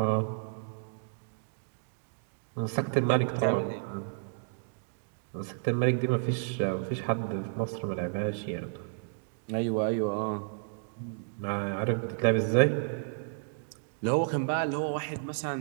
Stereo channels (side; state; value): left; silent; digital silence